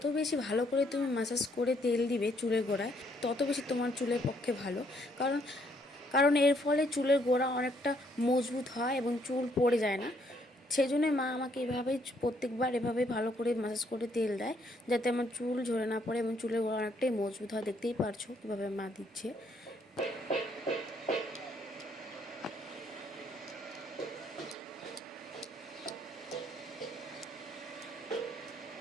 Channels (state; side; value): normal; both; correlation 0.69